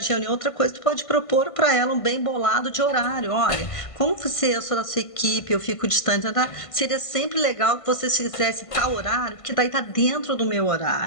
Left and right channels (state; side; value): late; right; 1.5 ms